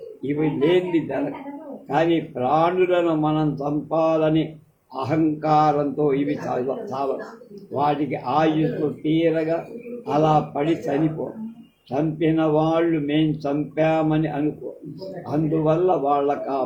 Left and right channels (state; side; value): identical; both; correlation 1.00